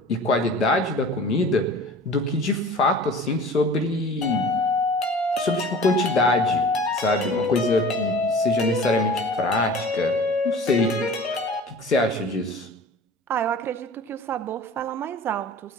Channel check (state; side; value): normal; both; correlation 0.42